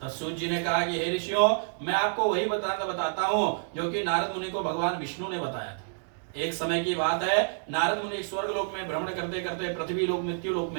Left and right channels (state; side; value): silent; left; digital silence